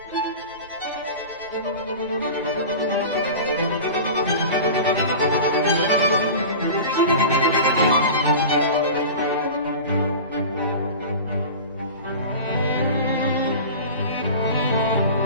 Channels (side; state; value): both; inverted; correlation -0.34